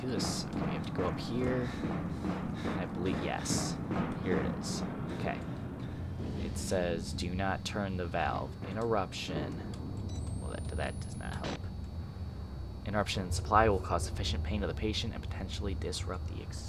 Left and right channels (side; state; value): both; identical; correlation 1.00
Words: this. Okay, we have to go up here. I believe, yes. Here it is. Okay. It says, do not turn the valve. Interruption. Well, that does not help. Interruption in supply will cause sufficient pain to the patient and potentially disrupt the